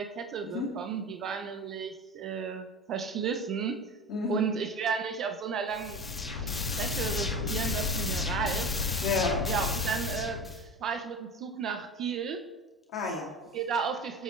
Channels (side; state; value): both; normal; correlation 0.30